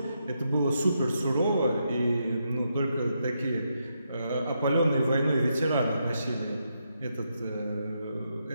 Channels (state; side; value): inverted; both; correlation -0.81